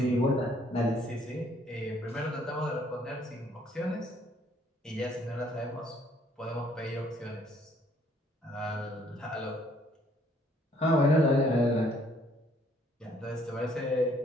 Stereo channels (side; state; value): both; normal; correlation 0.64